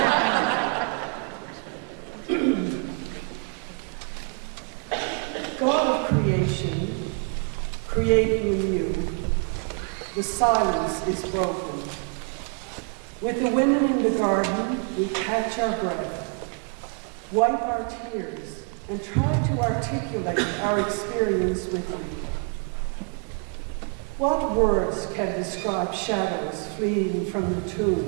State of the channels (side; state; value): left; quieter; 39.6 dB